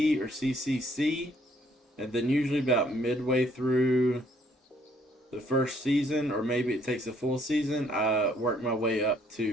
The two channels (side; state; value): both; normal; correlation 0.65